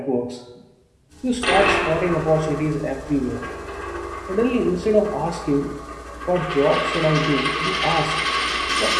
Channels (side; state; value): both; identical; correlation 1.00